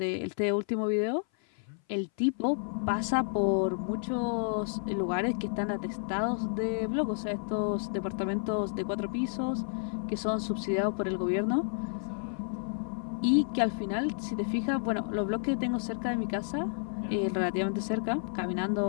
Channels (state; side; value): silent; right; 57 dB below the other